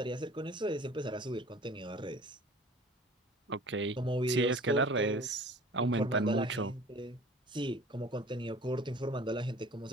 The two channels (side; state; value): both; normal; correlation 0.46